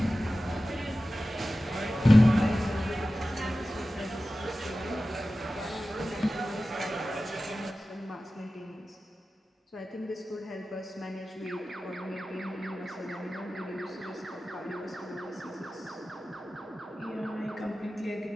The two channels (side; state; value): both; normal; correlation 0.95